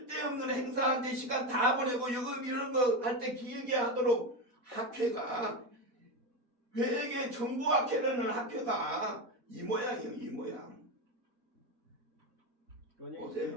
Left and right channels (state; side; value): late; left; 4.2 ms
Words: 행사한테 시간 다 보내고 여금 이런 거 할 때 길게 하도록 학회가 회계 정보학회라는 학회가 이 모양이에요. 이 모양.